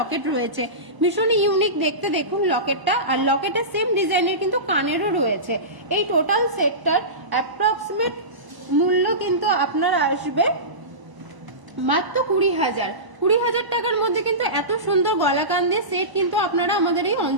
রয়েছে, ভীষণই ইউনিক দেখতে। দেখুন লকেটটা, আর লকেটের সেম ডিজাইনের কিন্তু কানেরও রয়েছে। এই টোটাল সেটটার অ্যাপ্রক্সিমেট মূল্য কিন্তু আপনার আসবে মাত্র 20,000 টাকার মধ্যে। কিন্তু এত সুন্দর গলা কান দিয়ে সেট কিন্তু আপনারা আমাদের এই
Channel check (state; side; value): late; left; 1.0 ms